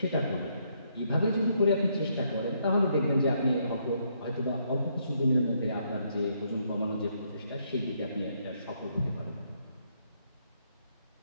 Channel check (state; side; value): inverted; both; correlation -0.73